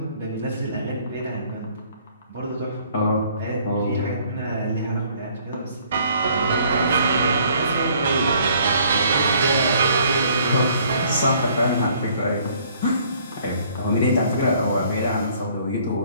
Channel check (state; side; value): inverted; both; correlation -0.60